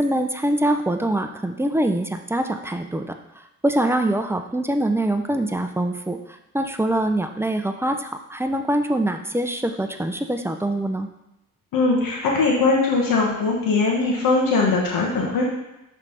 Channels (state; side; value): normal; both; correlation 0.52